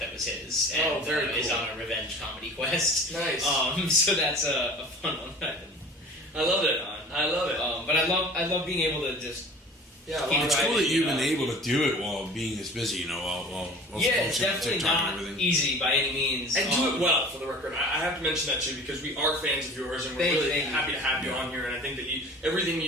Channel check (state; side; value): normal; both; correlation 0.42